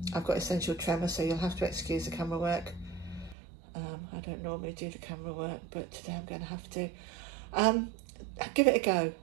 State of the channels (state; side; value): drops out; left; at 3.4 s